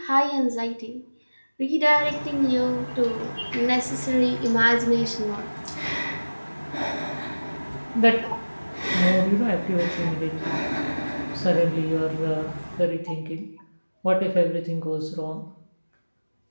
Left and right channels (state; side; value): inverted; both; correlation -1.00